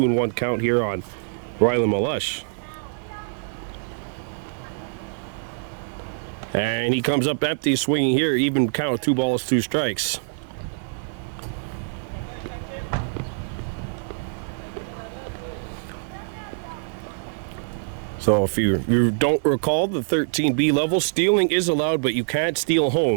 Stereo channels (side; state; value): left; silent; digital silence